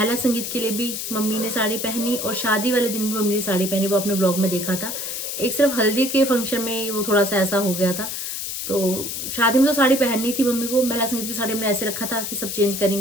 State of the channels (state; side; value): noise; left; hiss, 5 dB below the sound